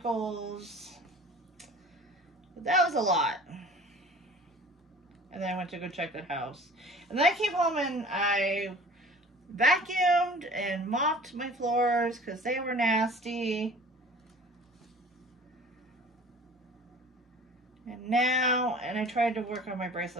But that was a lot. And then I went to go check the house. And then I came home and I vacuumed and mopped my floors because they were nasty. And I tried to work on my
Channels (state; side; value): normal; both; correlation 0.45